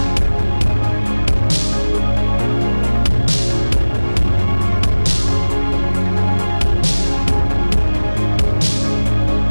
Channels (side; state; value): both; inverted; correlation -1.00